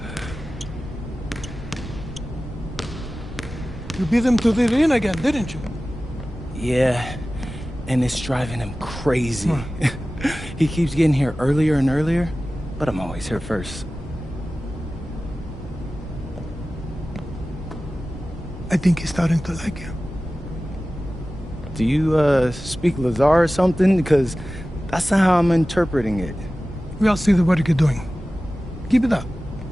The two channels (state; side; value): normal; both; correlation 0.96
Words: You beat him to the ring again, didn't you? Yeah, and it's driving him crazy. He keeps getting here earlier and earlier, but I'm always here first. I think he's starting to like you. Do you, speak Lazar or something? Because that's not how I'm interpreting it. We all see the work you're doing. Keep it up.